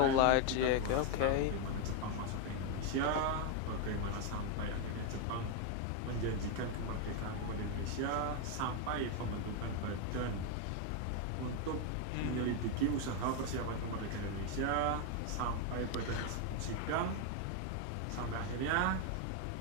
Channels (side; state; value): both; different; correlation 0.01